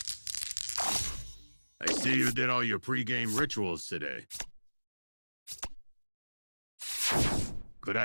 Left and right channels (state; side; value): inverted; both; correlation -1.00